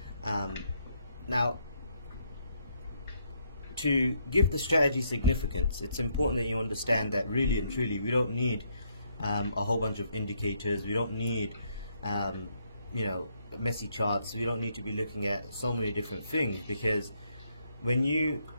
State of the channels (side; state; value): both; inverted; correlation -0.73